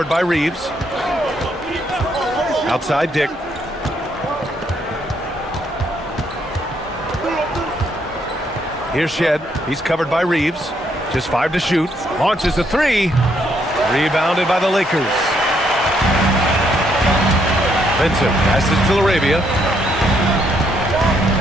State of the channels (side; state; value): both; normal; correlation 0.73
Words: by Reeves. Outside Dick. Here's Shed. He's covered by Reeves. Just 5 to shoot. Launches a 3. Rebounded by the Lakers. Vincent passes to Laravia.